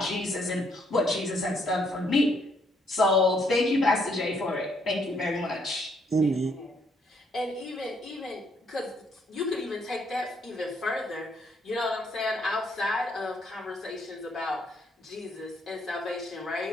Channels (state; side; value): normal; both; correlation 0.70